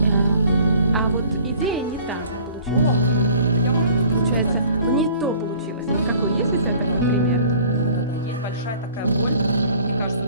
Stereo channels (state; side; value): inverted; both; correlation -0.51